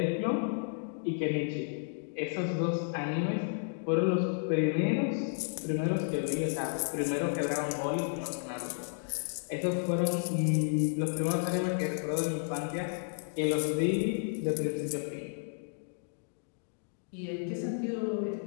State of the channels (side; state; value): right; silent; digital silence